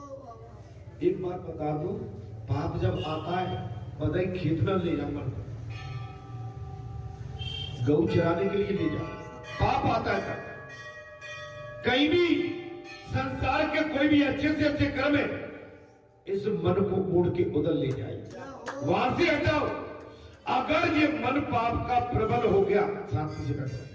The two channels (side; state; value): both; identical; correlation 1.00